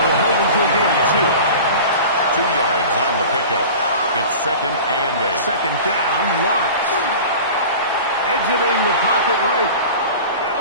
They'll hold him to a gain of 2. 2 yards on the pickup. It's 2nd and 8. Second down, Lawrence. Exiting the pocket right.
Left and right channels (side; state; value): both; inverted; correlation -0.37